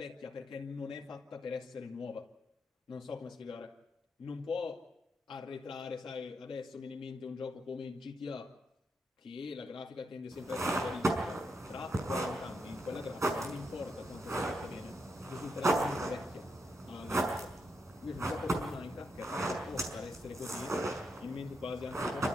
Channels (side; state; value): both; normal; correlation 0.81